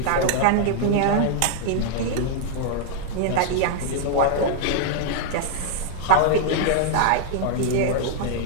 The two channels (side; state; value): both; different; correlation 0.00